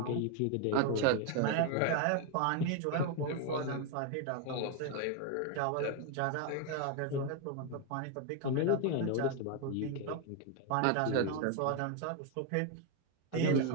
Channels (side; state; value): both; different; correlation 0.01